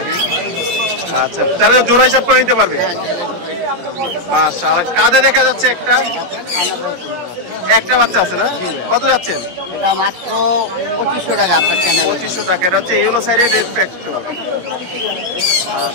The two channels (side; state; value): left; late; 17 ms